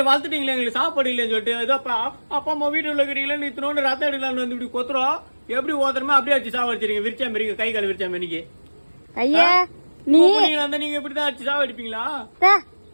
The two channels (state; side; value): inverted; both; correlation -1.00